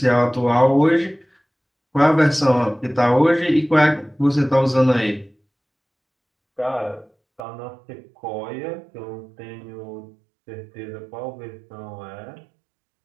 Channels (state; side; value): drops out; left; at 7.4 s